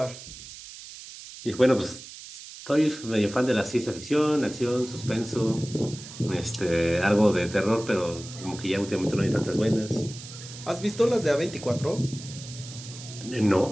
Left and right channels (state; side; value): noise; right; hiss, 14 dB below the sound